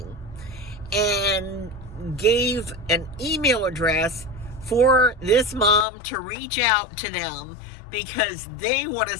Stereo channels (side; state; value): right; drops out; at 5.9 s